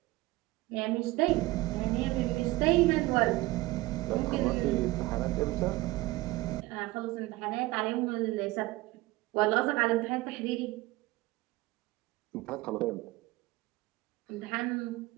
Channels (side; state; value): left; quieter; 19.7 dB